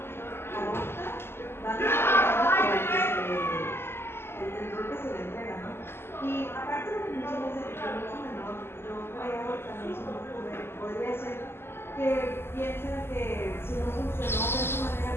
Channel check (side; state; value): right; late; 0.12 ms